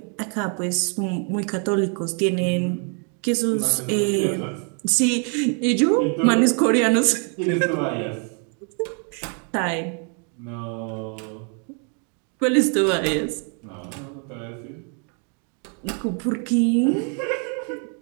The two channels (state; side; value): quieter; left; 39.9 dB